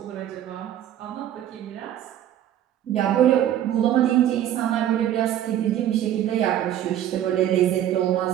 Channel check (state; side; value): quieter; left; 11.4 dB